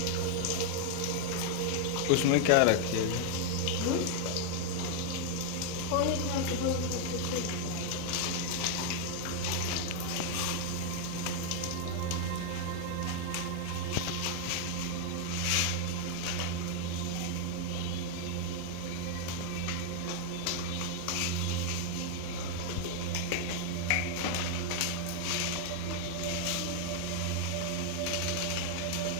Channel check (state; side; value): different; both; correlation 0.00